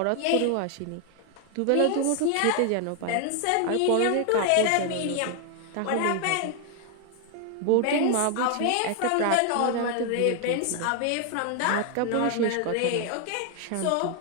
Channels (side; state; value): both; different; correlation 0.00